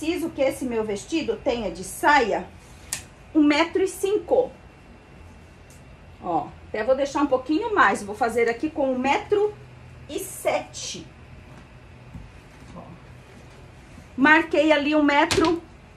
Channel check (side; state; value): both; identical; correlation 1.00